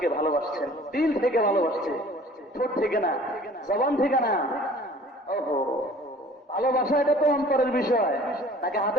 ভালোবাসছেন, দিল থেকে ভালোবাসছে, ঠোঁট থেকে না, জবান থেকে না। ওহো, ভালোবাসা এটা তো অন্তরের বিষয়, নাকি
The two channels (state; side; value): normal; both; correlation 0.49